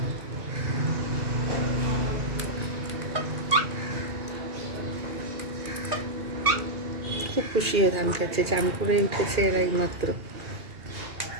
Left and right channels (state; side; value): late; left; 2.4 ms